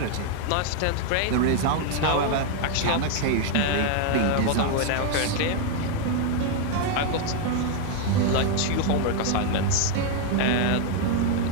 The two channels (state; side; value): different; both; correlation 0.00